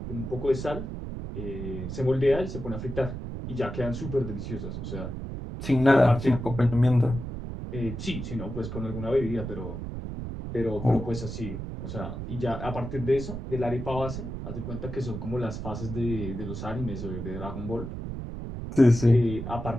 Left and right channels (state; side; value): noise; right; rumble, 7 dB below the sound